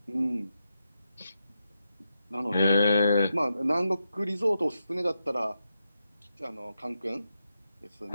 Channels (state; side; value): inverted; both; correlation -0.86